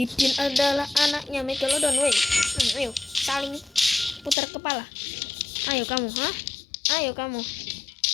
adalah anaknya Megalodon. Ayo saling putar kepala. Ayo kamu, Ayo kamu.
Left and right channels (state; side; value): drops out; right; at 4.4 s